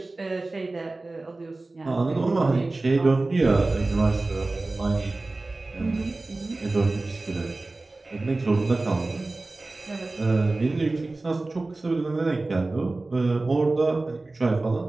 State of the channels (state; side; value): quieter; left; 3.2 dB